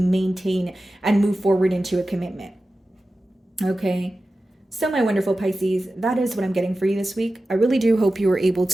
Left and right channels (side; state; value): both; normal; correlation 0.94